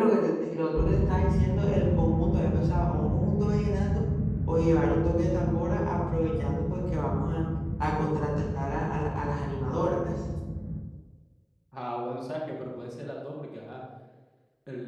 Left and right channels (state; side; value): identical; both; correlation 1.00